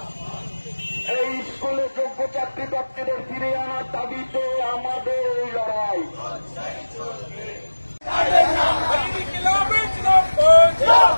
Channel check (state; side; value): inverted; both; correlation -1.00